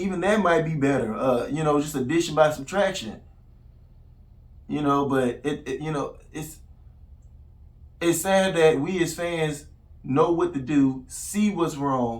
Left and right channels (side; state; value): both; identical; correlation 1.00